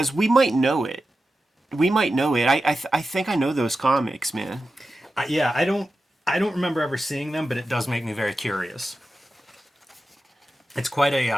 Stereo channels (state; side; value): normal; both; correlation 0.92